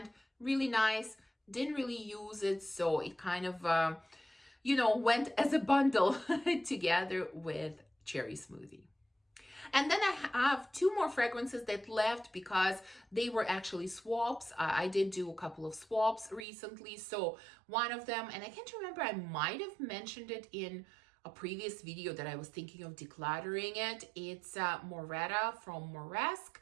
really nice. Didn't really use it, so it kind of, you know, went as a bundle together with Cherry Smoothie. And then I have two more fragrances that left because they were actually swaps. I did do a couple of swaps recently. So one of them, and I can't remember, I might have mentioned it in a previous video that I was thinking of decluttering it. It's Moretta from Moresque.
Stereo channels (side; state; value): left; drops out; at 16.4 s